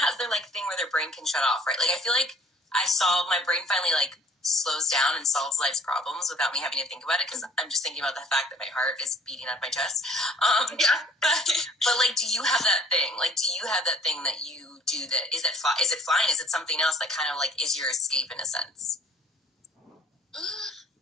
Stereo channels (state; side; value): normal; both; correlation 0.54